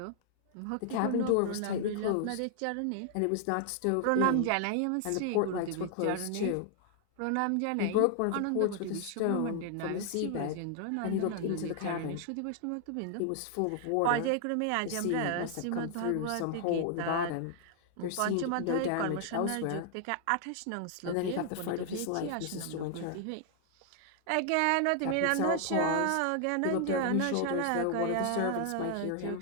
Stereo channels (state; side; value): different; both; correlation 0.00